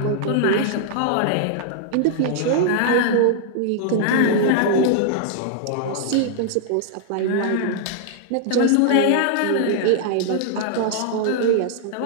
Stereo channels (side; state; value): both; different; correlation -0.01